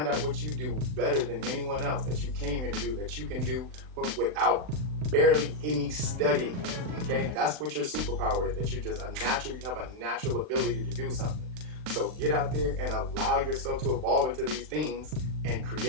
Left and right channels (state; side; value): late; left; 39 ms